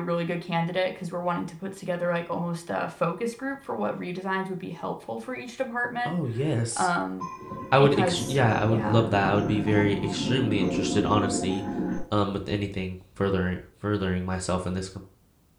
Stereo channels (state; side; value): identical; both; correlation 1.00